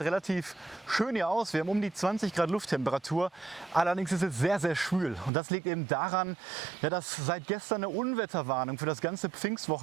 relativ schön hier aus, wir haben um die 20 Grad Lufttemperatur, allerdings ist es sehr, sehr schwül. Und das liegt eben daran, ja, dass seit gestern eine Unwetterwarnung für das ganze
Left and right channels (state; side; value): drops out; left; at 5.3 s